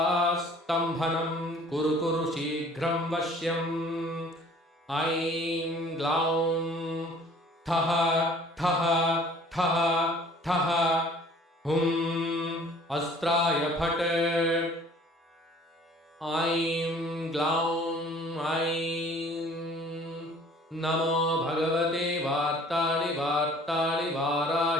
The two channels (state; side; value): normal; both; correlation 0.52